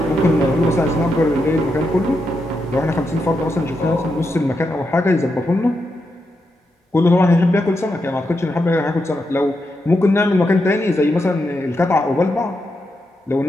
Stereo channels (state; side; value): normal; both; correlation 0.85